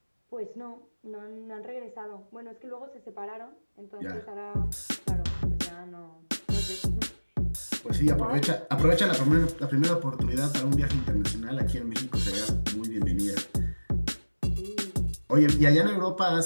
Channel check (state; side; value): inverted; both; correlation -1.00